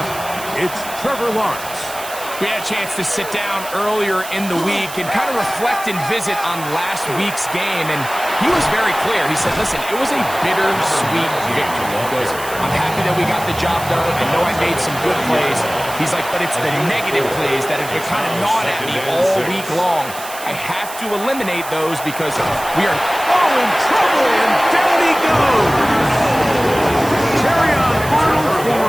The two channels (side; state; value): right; noise; hiss, 12 dB below the sound